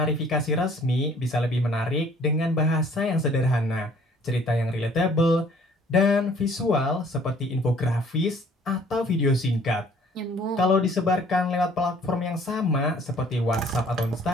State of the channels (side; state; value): both; normal; correlation 0.56